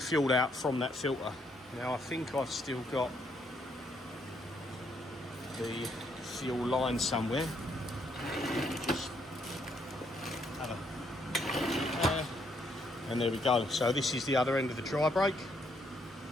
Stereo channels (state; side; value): normal; both; correlation 0.72